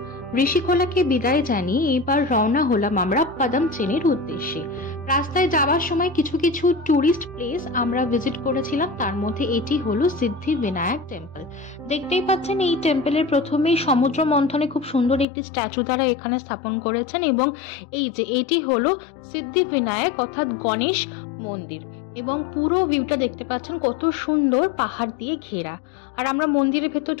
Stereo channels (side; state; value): right; drops out; at 15.2 s